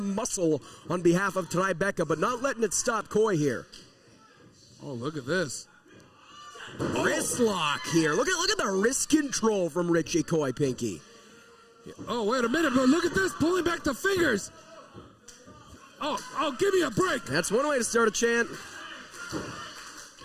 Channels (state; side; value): identical; both; correlation 1.00